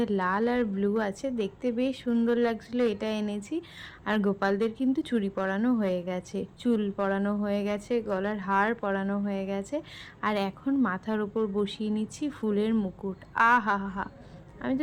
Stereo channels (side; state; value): both; identical; correlation 1.00